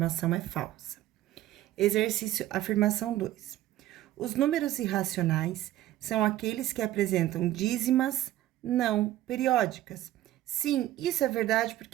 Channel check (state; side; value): quieter; left; 14.2 dB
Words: é falsa. Exercício, afirmação 2. Os números irracionais são aqueles que apresentam dízimas não periódicas. Sim, isso é verdade,